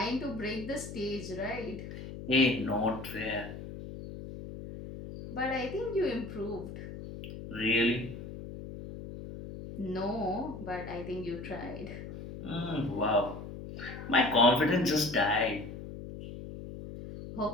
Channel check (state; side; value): noise; left; hum, 10 dB below the sound